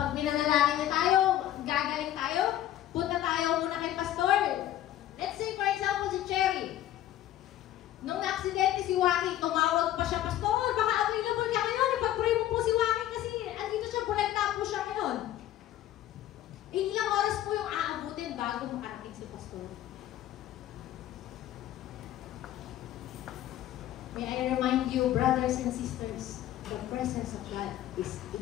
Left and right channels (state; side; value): quieter; right; 12.8 dB